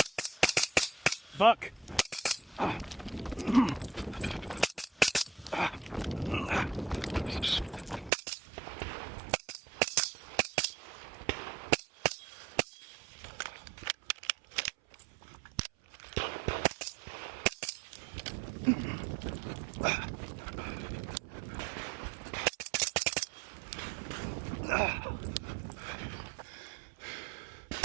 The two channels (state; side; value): drops out; left; at 8.1 s